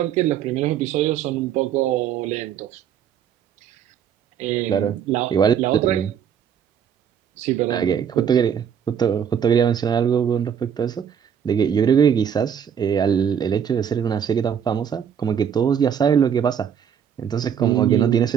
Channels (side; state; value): left; quieter; 8.2 dB